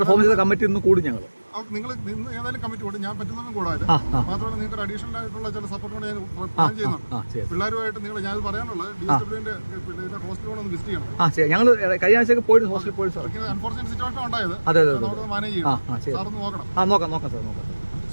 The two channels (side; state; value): both; inverted; correlation -1.00